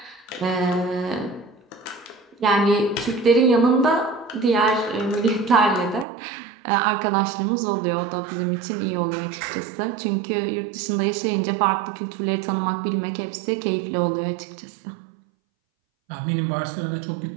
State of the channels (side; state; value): left; drops out; at 6.1 s